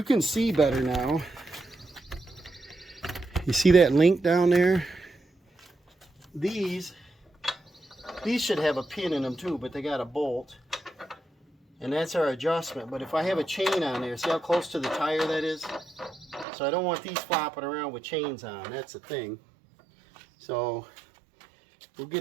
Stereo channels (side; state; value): left; drops out; at 16.4 s